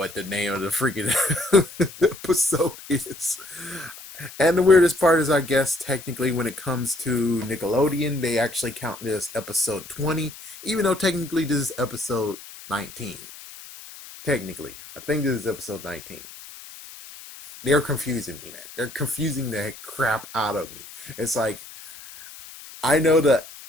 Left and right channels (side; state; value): left; noise; hiss, 16 dB below the sound